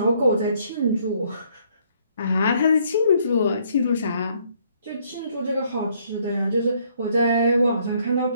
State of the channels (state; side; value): inverted; both; correlation -0.66